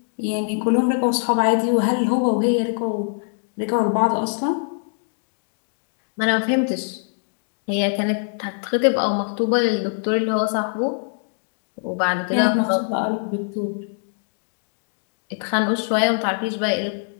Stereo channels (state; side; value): silent; right; digital silence